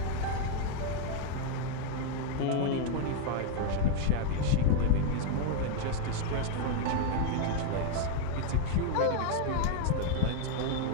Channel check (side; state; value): both; different; correlation 0.00